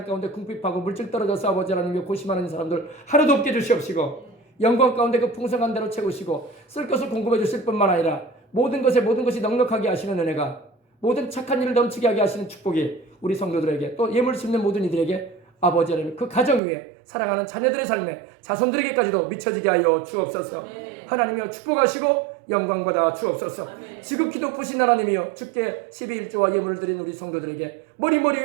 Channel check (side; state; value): left; drops out; at 16.6 s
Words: 가운데 궁핍하고 물질 떨어져서 아버지 하나님께 고심하는 사람들 하나도 없게 주시옵시고 영광 가운데 그 풍성한 대로 채우시고 쓸 것을 공급해 주실 뿐만 아니라 모든 것이 넉넉하게 하시는 은혜가 모든 착한 일을 넘치게 하게 하시는 축복이 우리 성도들에게 또 예물 심는 모든 이들에게 아버지 하나님 그 가정 위에 사랑하는 자녀들의 삶에 자손들에게까지도 미쳐지게 하여 주옵소서. 하나님이여 축복하시고 영광받아 주옵소서. 지극히 높으신 하나님이여 주께 12일조와 예물을 드린 우리 성도들에게 머리